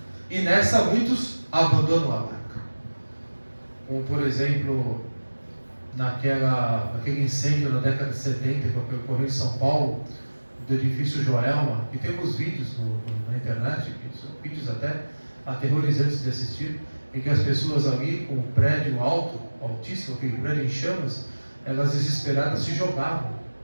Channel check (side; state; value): both; inverted; correlation -1.00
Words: E nessa muitos abandonam a barca, como por exemplo naquele incêndio na década de 70 que ocorreu em São Paulo, do edifício Joelma, e temos vídeos na internet, que são vídeos até aterrorizantes de assistir, em que as pessoas ali com o prédio alto, altíssimo, aquele prédio em chamas, elas desesperadas se jogavam,